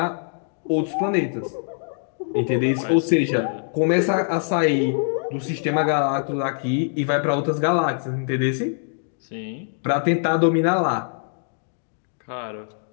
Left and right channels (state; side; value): silent; right; digital silence